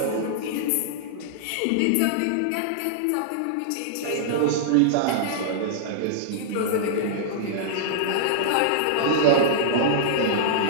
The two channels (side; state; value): both; different; correlation -0.02